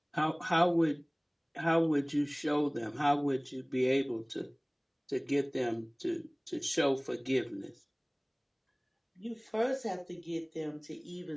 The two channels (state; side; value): identical; both; correlation 1.00